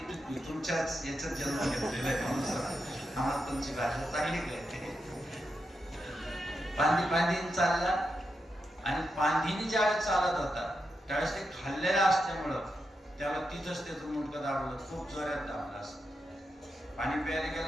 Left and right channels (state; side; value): normal; both; correlation 0.86